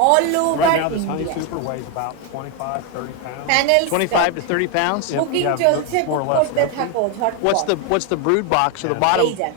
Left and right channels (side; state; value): both; different; correlation 0.01